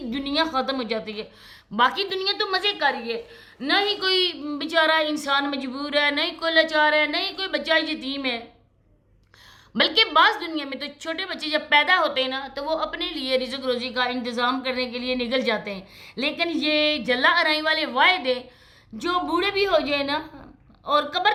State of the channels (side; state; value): both; identical; correlation 1.00